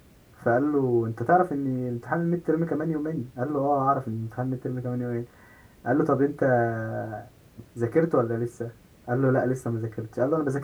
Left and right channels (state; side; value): identical; both; correlation 1.00